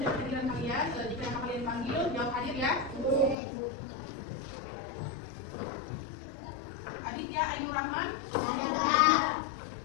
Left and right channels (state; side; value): drops out; right; at 3.4 s